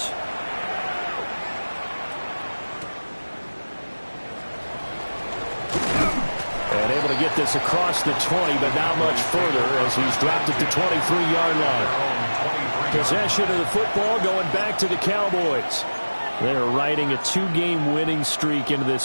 And able to get this across the 20, but not much further as he's dropped it to 23-yard line. Possession of the football going back to the Cowboys. They're riding a 2-game winning streak into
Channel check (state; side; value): inverted; both; correlation -1.00